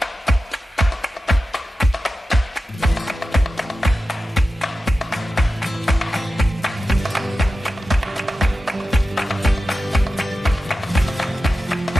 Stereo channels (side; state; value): both; normal; correlation 0.92